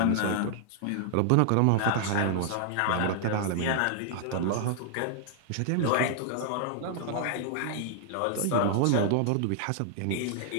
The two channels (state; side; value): different; both; correlation -0.01